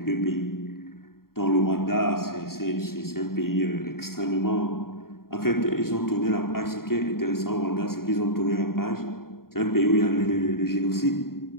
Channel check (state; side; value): late; right; 0.93 ms